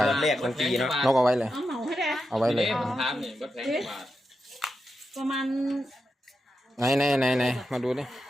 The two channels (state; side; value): normal; both; correlation 0.88